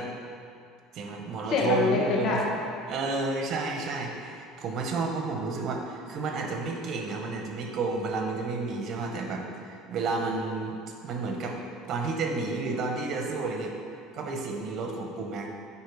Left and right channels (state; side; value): normal; both; correlation 0.42